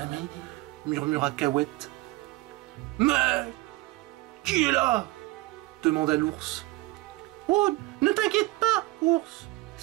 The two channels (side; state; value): left; quieter; 20.9 dB